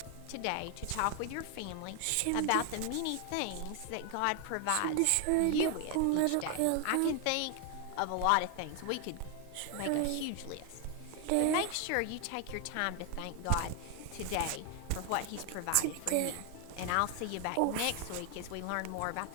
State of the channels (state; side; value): different; both; correlation 0.00